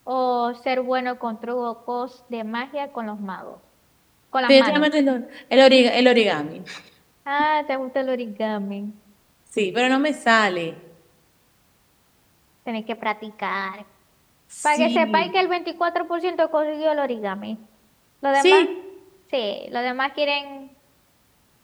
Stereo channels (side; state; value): both; identical; correlation 1.00